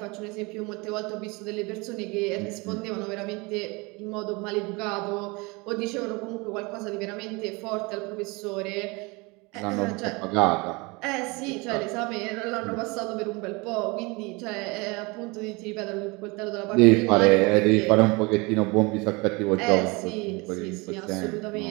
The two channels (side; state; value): left; quieter; 26.5 dB